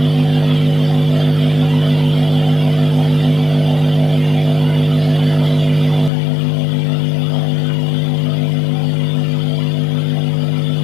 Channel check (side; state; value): right; drops out; at 6.1 s